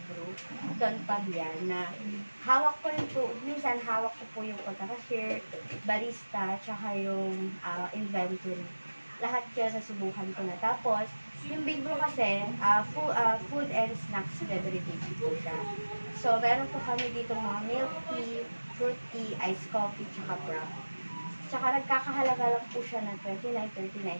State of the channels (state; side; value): inverted; both; correlation -1.00